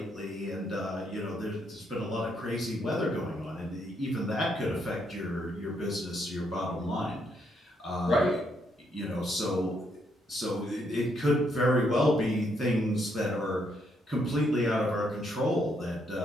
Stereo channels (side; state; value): both; normal; correlation 0.75